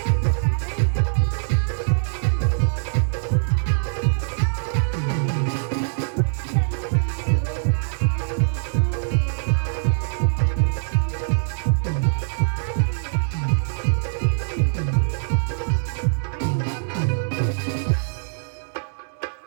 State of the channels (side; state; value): left; silent; 63 dB below the other